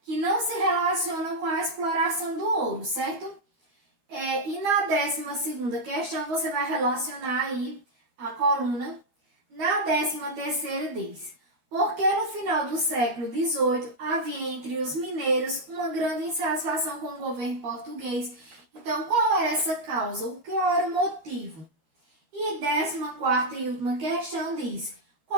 que não se relacionam com a exploração do ouro, certo? E na 12ª questão, você vai relacionar aí a coluna. Na 13ª diz, porque no final do século XVIII havia entre os mineiros uma grande insatisfação com o governo português. Então, qual era essa causa? Qual era o motivo? E 14ª e última questão diz,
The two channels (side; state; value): left; late; 13 ms